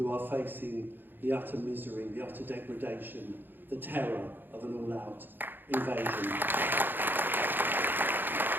are facing the utter misery, the utter degradation, the terror of an all-out invasion.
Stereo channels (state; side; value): late; left; 0.094 ms